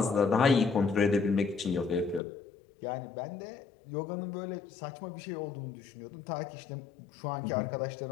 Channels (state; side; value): drops out; right; at 2.2 s